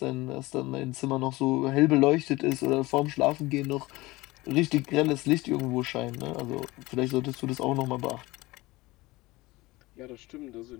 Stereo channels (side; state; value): right; quieter; 20.6 dB